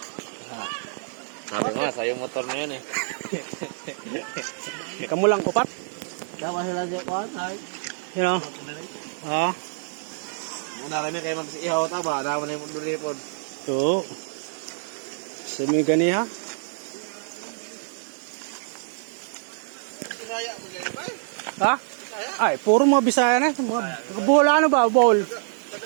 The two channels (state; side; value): silent; left; digital silence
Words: Sabi nga, sa'yo motor na yun eh. Kamu lang upat? Dapat sila siya ko, ay. You know? Ah. Muna kami kayo mag-ihaw ta ba? Dapat na yung munduripon. To. Semi gani ha? Ha? Ay, puro mga Bisaya na. Mga bowl ano ba? Bowl.